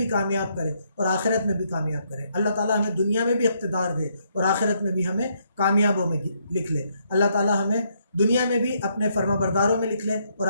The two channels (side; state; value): both; inverted; correlation -0.73